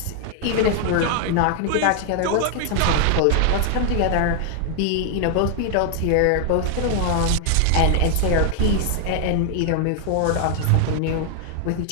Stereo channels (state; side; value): different; both; correlation 0.00